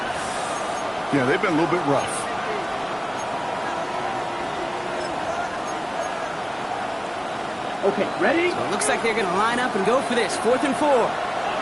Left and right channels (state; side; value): identical; both; correlation 1.00